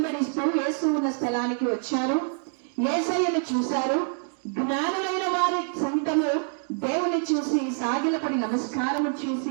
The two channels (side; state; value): left; silent; 57 dB below the other